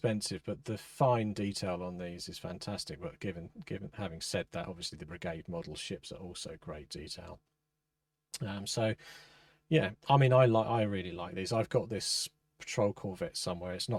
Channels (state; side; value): identical; both; correlation 1.00